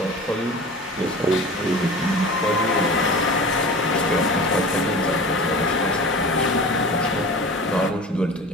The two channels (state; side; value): normal; both; correlation 0.36